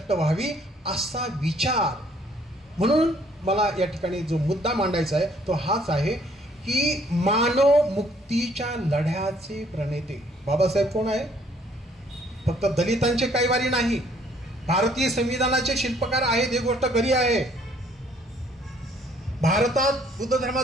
व्हावी असा विचार. म्हणून मला या ठिकाणी जो मुद्दा मांडायचा आहे तो हाच आहे की मानव मुक्तीच्या लढ्याचे प्रणेते बाबासाहेब कोण आहे? फक्त दलितांचे कैवारी नाही, भारतीय संविधानाचे शिल्पकार आहेत, ही गोष्ट खरी आहे. भारतात बुद्ध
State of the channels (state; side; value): normal; both; correlation 0.63